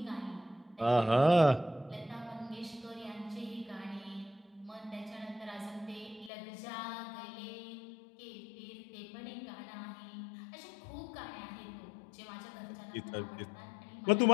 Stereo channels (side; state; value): right; drops out; at 6.3 s